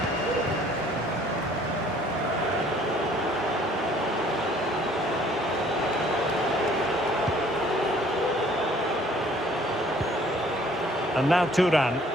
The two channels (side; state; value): both; normal; correlation 0.57